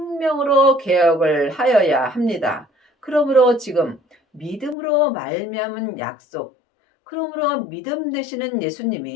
개혁을 하여야 합니다. 그러므로 지금 믿음으로 말미암은 약속, 그러므로 믿음 되시는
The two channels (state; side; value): drops out; right; at 4.8 s